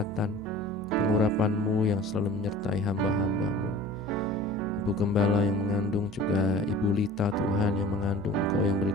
pengurapan-Mu yang selalu menyertai hamba-hamba-Mu. Ibu Gembala yang mengandung, juga Ibu Lita Tuhan yang mengandung, Engkau yang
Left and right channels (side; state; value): both; normal; correlation 0.42